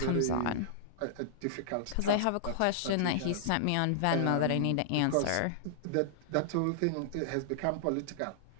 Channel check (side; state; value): both; different; correlation -0.01